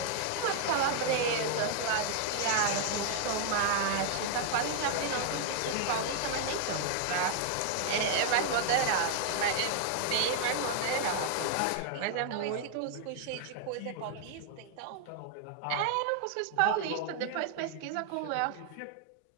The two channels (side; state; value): both; different; correlation 0.00